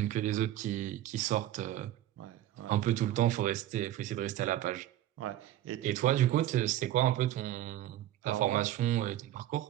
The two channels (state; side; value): quieter; left; 13.3 dB